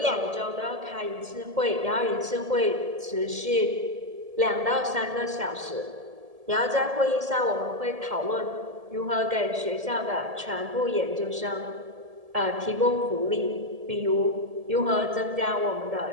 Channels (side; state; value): left; late; 1.7 ms